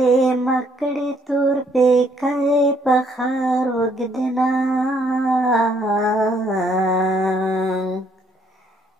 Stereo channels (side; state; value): both; normal; correlation 0.67